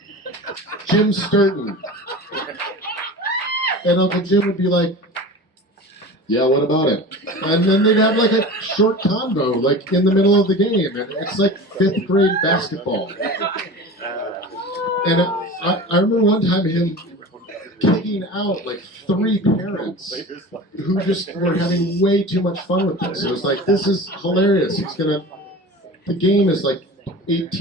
Jim Sturton. And Uncle Jim would be like, yeah, what about it? And then they'd have like a short convo, like in the middle of the game. And it's like 5th grade basketball. And I remember one time him kicking out like 3 parents who just were having way too much fun with this. It was like, this is hilarious. The game is like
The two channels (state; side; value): normal; both; correlation 0.34